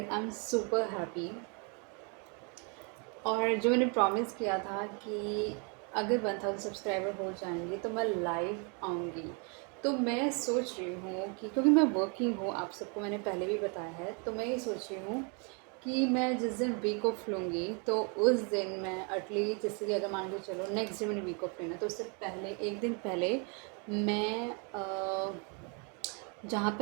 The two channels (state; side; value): quieter; left; 35.7 dB